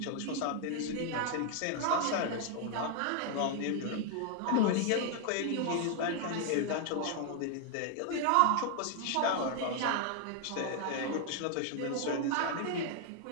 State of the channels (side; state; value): both; different; correlation 0.00